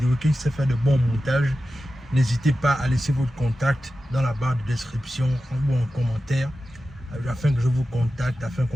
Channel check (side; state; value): both; normal; correlation 0.93